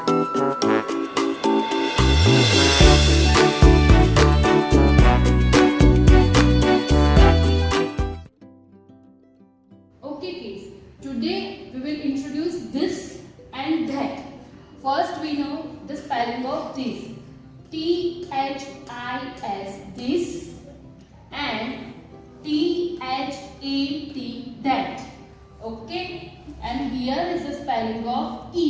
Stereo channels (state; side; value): identical; both; correlation 1.00